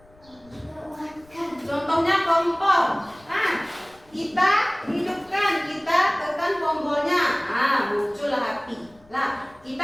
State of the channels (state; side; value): noise; left; rumble, 29 dB below the sound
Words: Contohnya kompor. Nah, kita hidupkan, kita tekan tombolnya. Muncullah api. Nah,